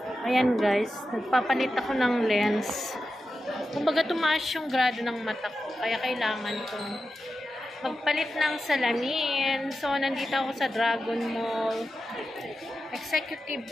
Ayan guys, nagpapalit ako ng lens. Kumbaga tumaas yung grado ng mata ko, kaya kailangan kong magpalit ng salamin. So, nandito ako sa Dragon Mall Executive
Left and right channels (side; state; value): both; normal; correlation 0.91